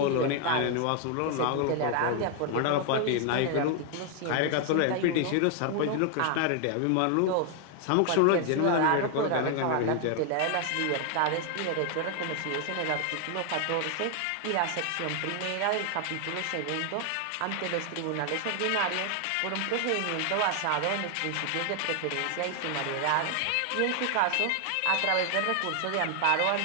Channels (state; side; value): different; both; correlation 0.00